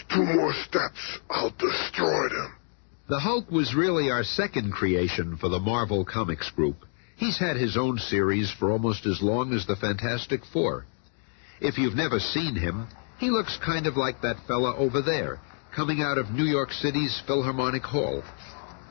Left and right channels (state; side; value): silent; right; 56 dB below the other